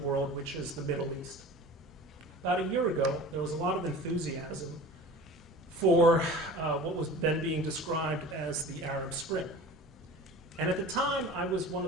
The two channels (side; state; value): both; normal; correlation 0.39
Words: which is the Middle East. About a year ago, there was a lot of enthusiasm for what was then being described as the Arab Spring. And at the time, I was one